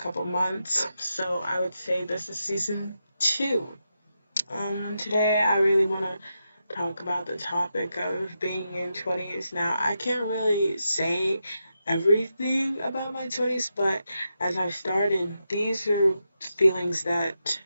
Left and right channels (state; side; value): inverted; both; correlation -0.86